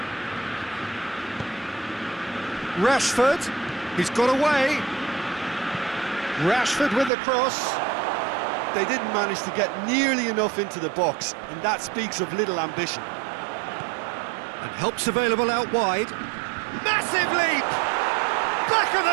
Rashford, he's got away. Rashford with the cross. They didn't manage to get nearly enough into the box, and that speaks of little ambition. And help's available out wide. Massive leap! Back of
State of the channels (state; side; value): drops out; left; at 7.1 s